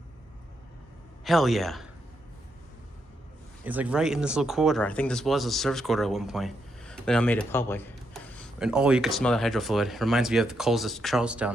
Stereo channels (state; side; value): normal; both; correlation 0.80